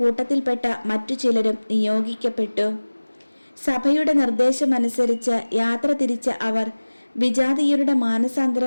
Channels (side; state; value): both; inverted; correlation -1.00